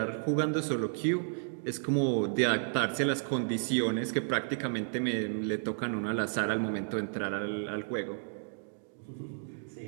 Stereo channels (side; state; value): left; silent; digital silence